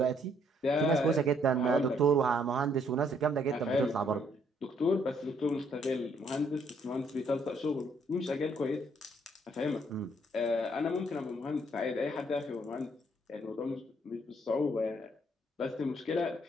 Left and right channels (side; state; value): both; normal; correlation 0.68